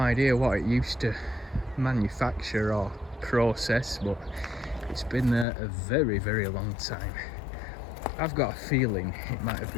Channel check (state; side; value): drops out; right; at 5.5 s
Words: what it used to manufacture or process, but it's been there a very, very long time. I've got a feeling it might have